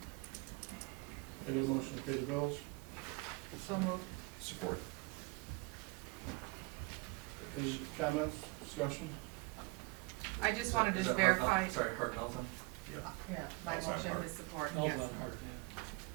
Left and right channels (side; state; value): left; quieter; 27.1 dB